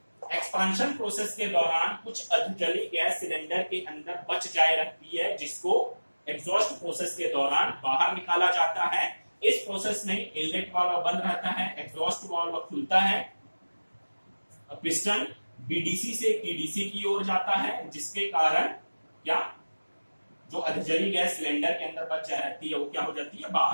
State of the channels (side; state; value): both; inverted; correlation -1.00